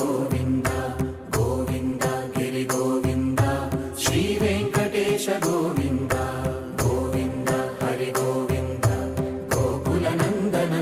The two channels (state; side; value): identical; both; correlation 1.00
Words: గోవింద గిరి గోవింద శ్రీ వెంకటేశ గోవింద గోవింద హరి గోవింద గోకుల నందన